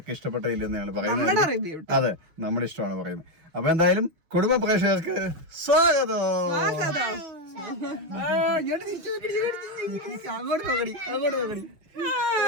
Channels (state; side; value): late; left; 6.5 ms